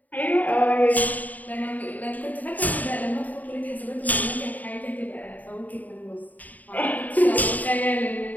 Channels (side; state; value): right; late; 0.077 ms